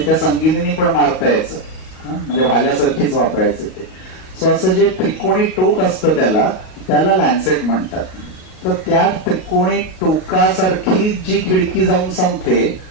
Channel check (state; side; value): late; right; 37 ms